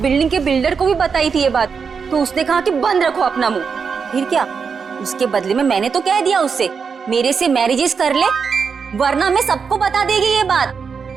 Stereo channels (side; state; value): left; quieter; 5.8 dB